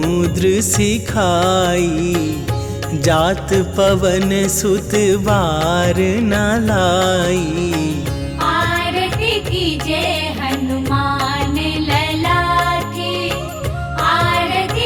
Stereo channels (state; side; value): identical; both; correlation 1.00